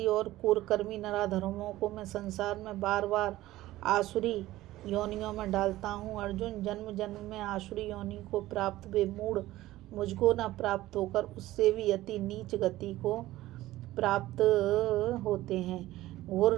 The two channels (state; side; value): quieter; left; 16.2 dB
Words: और कुकर्मी नराधर्मों को मैं संसार में बार बार आसुरी योनियों में डालता हूँ। अर्जुन, जन्म जन्म में आसुरी योनि को प्राप्त वे मूढ़ मुझको न प्राप्त होकर उससे भी अति नीच गति को प्राप्त होते हैं,